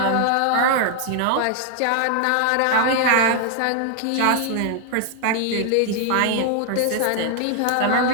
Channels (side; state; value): both; different; correlation 0.00